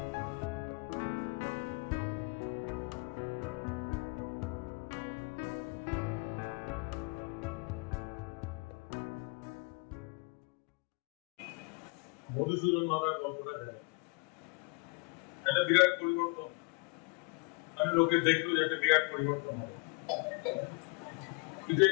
মধুসূদন মাতার গল্পটা জানি, একটা বিরাট পরিবর্তন, মানে লোকে দেখলো যে একটা বিরাট পরিবর্তন হবে, কিন্তু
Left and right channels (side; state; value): right; quieter; 30.9 dB